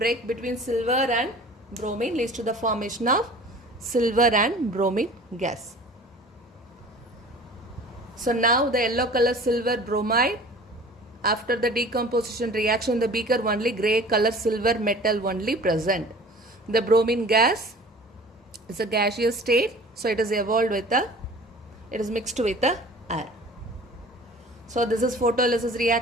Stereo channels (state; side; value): normal; both; correlation 0.44